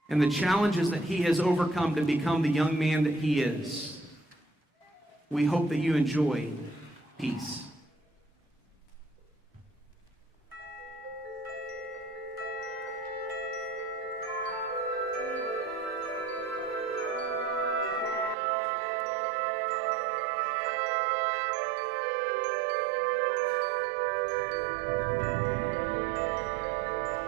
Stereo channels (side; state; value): left; drops out; at 18.4 s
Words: and the challenges that he has overcome to become the young man that he is. We hope that you enjoy peace.